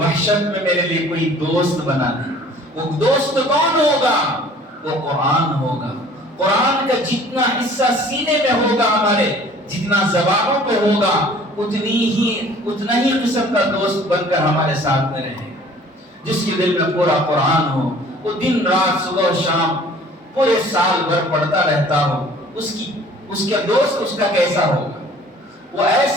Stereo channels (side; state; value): both; normal; correlation 0.51